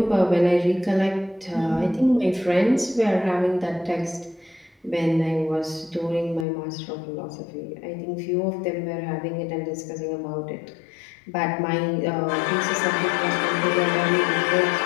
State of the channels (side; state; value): right; drops out; at 6.5 s